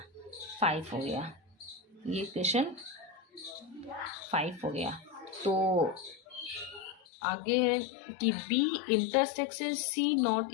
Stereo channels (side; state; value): right; drops out; at 7.0 s